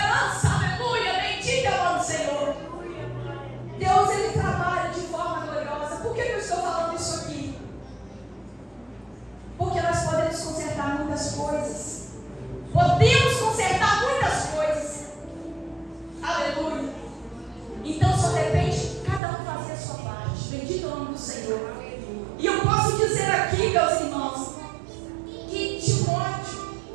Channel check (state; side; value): drops out; left; at 19.2 s